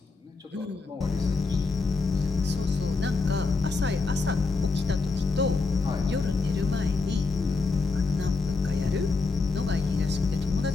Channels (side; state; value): right; quieter; 4.1 dB